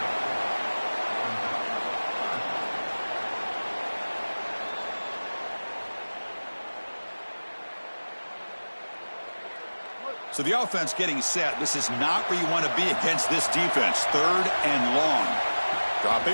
So the offense getting set. This is not where you want to be against this defense. Third and long.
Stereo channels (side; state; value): both; inverted; correlation -1.00